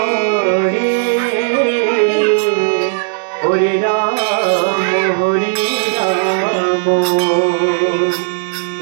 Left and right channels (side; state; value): left; silent; digital silence